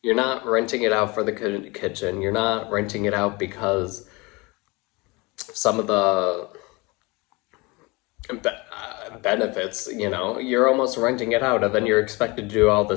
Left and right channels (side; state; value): right; quieter; 25.5 dB